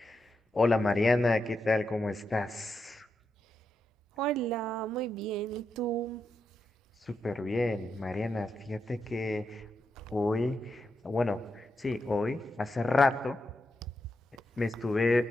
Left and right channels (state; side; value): normal; both; correlation 0.85